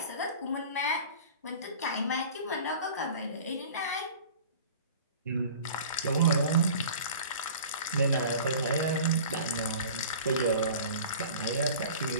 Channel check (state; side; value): inverted; both; correlation -0.41